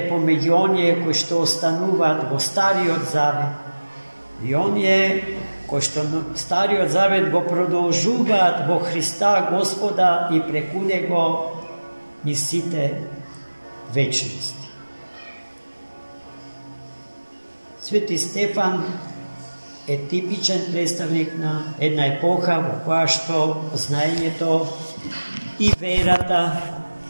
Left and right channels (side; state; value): both; inverted; correlation -1.00